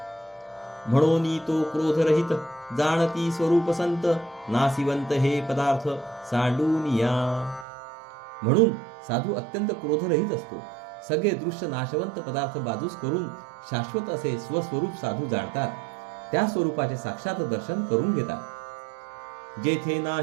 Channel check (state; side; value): drops out; left; at 7.7 s